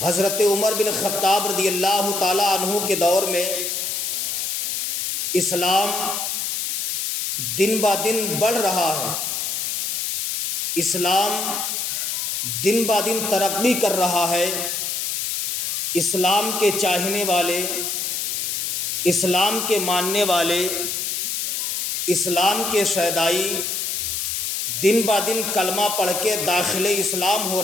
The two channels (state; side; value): noise; left; hiss, 1 dB below the sound